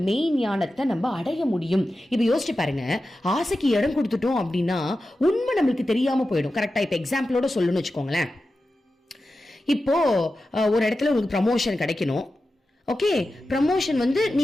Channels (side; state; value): both; normal; correlation 0.92